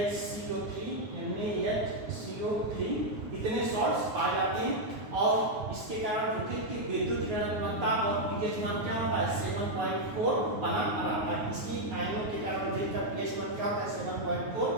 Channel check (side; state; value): left; late; 9.5 ms